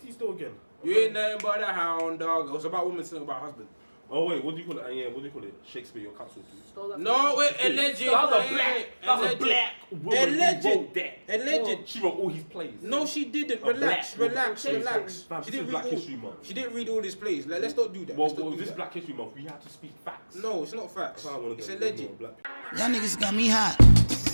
he steal again? You ain't nothing but a hound dog. It was about women singing about husband. Oh wait, what do you call it? Yeah, what do you call it? Shakespeare, you're cancelled too. No, wait, alleged. That's a black woman who wrote that. Alleged. She wrote all his plays. No, she didn't. A Relax. black woman. She Fam, this didn't is Black read History all. Month. She didn't read all his plays. Like, let's not do that. Well, Let's not do this that. Black History Month, we have to speak facts. No, it's not facts. That's how I want to It's go. alleged. Black people. Y'all niggas got me hot.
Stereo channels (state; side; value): inverted; both; correlation -1.00